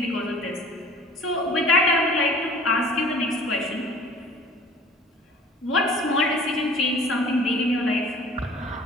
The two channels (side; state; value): both; normal; correlation 0.47